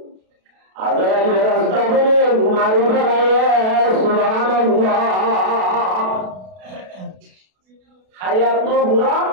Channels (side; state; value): left; late; 32 ms